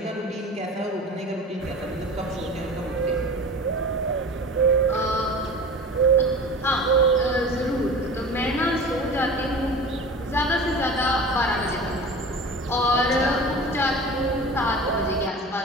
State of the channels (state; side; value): normal; both; correlation 0.36